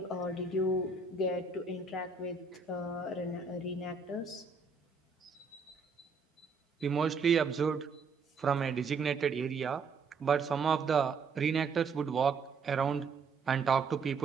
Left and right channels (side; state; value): left; quieter; 4.7 dB